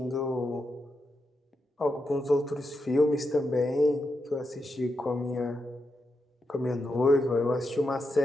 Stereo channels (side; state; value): both; normal; correlation 0.85